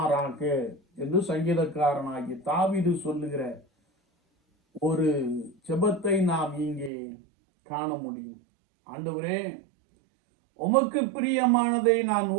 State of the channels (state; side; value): drops out; left; at 6.9 s